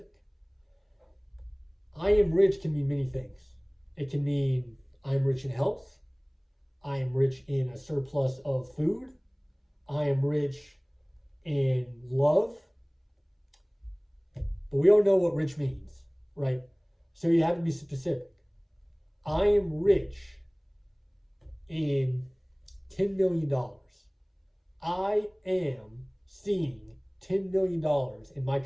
I am rich can mean many things. It can mean I am rich in health. I am rich in a surplus of food. I am rich in love. But we all know what rich means, right? So you have to be specific. I am rich in $10 million. I am seeing $10 million in my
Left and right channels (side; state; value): both; identical; correlation 1.00